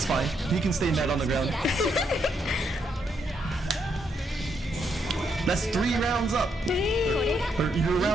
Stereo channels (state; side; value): normal; both; correlation 0.77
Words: fine. You can stay mad on the ground. That's 3 rounds up. Or you're